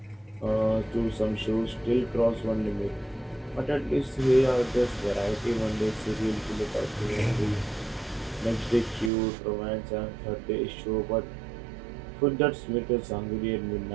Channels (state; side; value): drops out; left; at 9.1 s